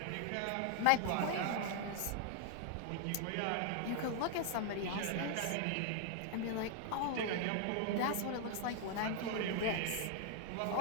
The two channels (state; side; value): different; both; correlation 0.00